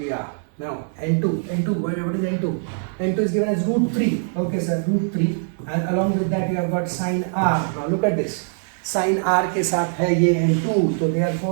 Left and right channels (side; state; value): left; silent; 64 dB below the other